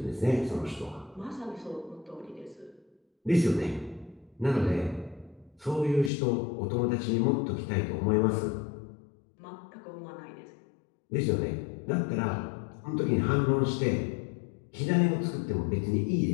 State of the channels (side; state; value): right; drops out; at 6.1 s